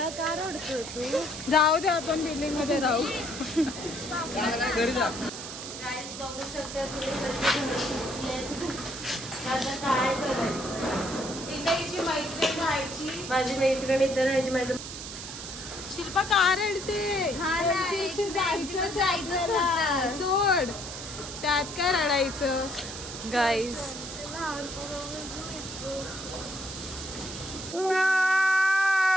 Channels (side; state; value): right; noise; hiss, 9 dB below the sound